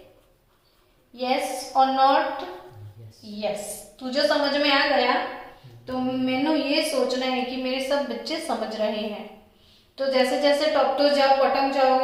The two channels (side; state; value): both; identical; correlation 1.00